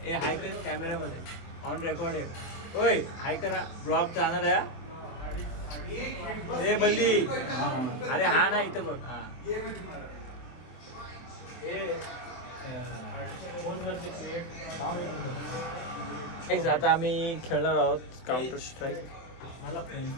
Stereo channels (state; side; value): late; right; 23 ms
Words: हे हाय कर कॅमेरामध्ये, ऑन रेकॉर्ड आहे. होय हाय करा, ब्लॉग जाणार आहे. हे बल्ली, अरे हा ना इथं बघ. हा आता आम्ही खेळणार आहोत काउंटर स्ट्राईक. मला फ्रेंच